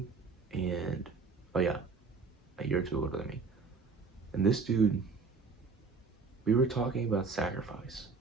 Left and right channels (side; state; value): left; quieter; 4.6 dB